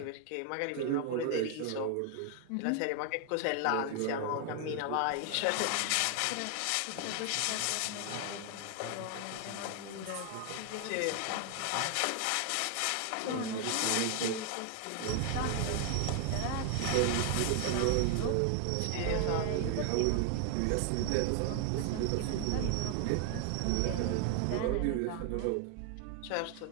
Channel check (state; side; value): different; both; correlation 0.00